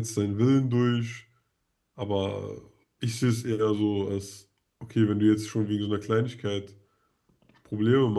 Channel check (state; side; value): identical; both; correlation 1.00